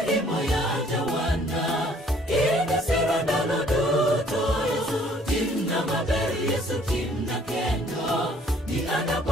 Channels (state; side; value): normal; both; correlation 0.59